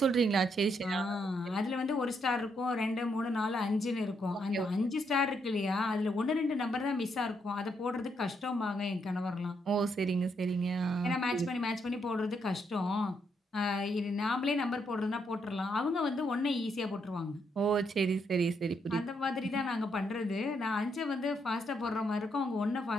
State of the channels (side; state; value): both; normal; correlation 0.77